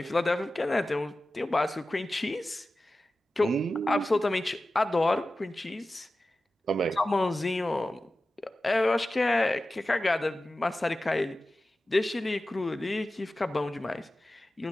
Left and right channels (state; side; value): normal; both; correlation 0.94